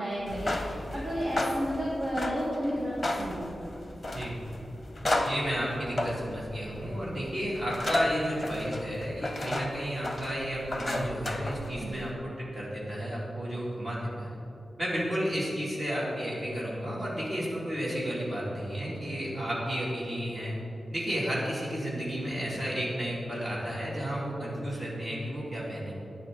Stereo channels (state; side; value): normal; both; correlation 0.92